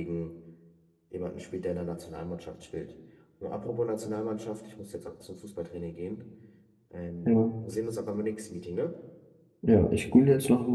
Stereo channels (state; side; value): identical; both; correlation 1.00